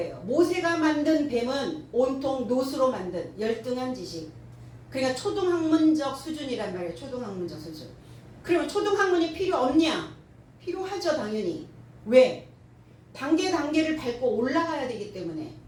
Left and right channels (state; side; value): identical; both; correlation 1.00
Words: 모세가 만든 뱀은 온통 놋으로 만든 열등한 지식. 그러니까 초등학문적 수준이란 말이에요. 초등학문적 수준. 그러면 초등학문이 필요 없냐? 필요하죠, 당연히. 왜? 단계를 밟고 올라가야 되기 때문에.